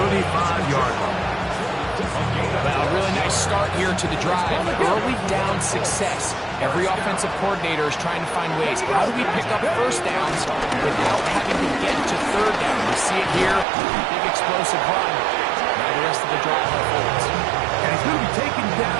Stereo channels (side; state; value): left; drops out; at 13.7 s